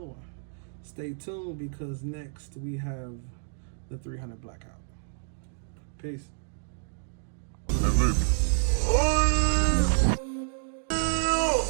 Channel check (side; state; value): left; silent; digital silence